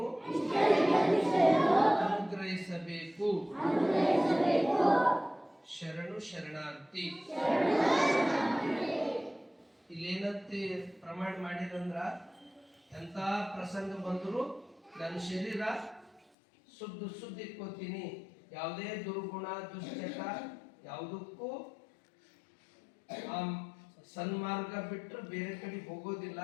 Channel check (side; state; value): right; drops out; at 16.2 s